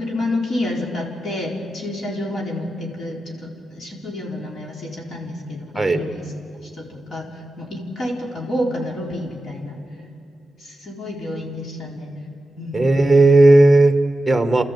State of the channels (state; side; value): normal; both; correlation 0.91